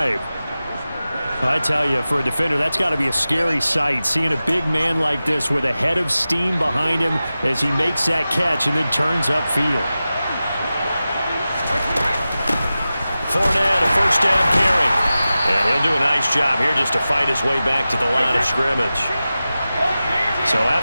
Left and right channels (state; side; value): inverted; both; correlation -0.94